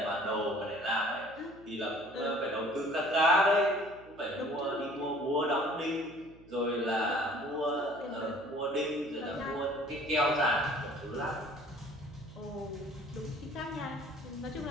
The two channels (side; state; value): right; noise; hum, 23 dB below the sound